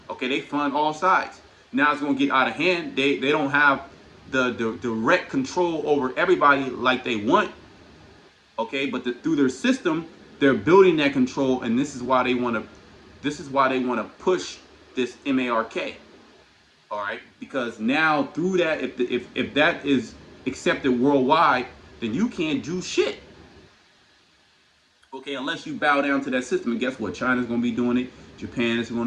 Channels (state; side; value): identical; both; correlation 1.00